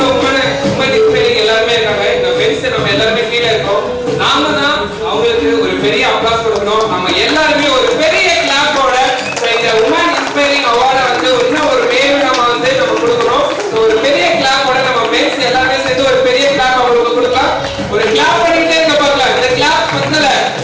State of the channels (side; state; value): both; identical; correlation 1.00